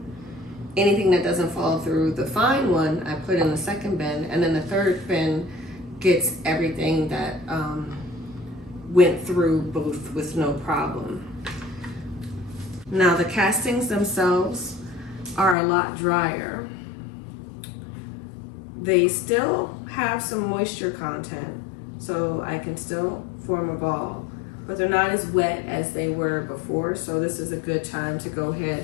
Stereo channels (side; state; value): right; drops out; at 15.6 s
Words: Anything that doesn't fall through the fine one, I put in the second bin. And then the third bin gets everything that went through both with no problem. Now the castings themselves are a lot drier. They still have some moisture content, so I can still form a ball, but they're not as wet as they were before, so this is a good time to go